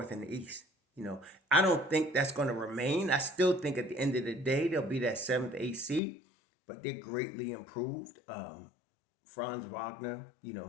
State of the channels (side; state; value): right; drops out; at 6.0 s